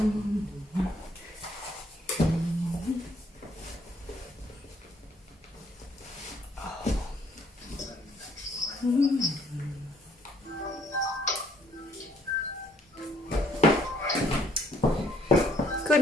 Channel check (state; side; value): normal; both; correlation 0.65